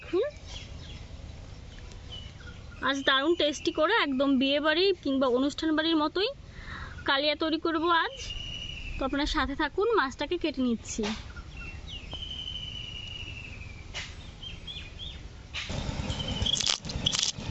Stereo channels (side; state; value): both; identical; correlation 1.00